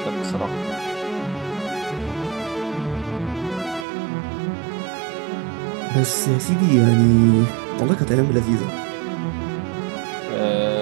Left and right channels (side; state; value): left; drops out; at 3.9 s